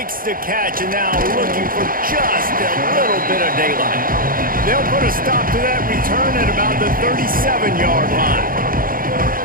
the catch, and now looking for just a little bit of daylight. They'll put a stop to that return at about the 37-yard line.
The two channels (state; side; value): late; left; 0.41 ms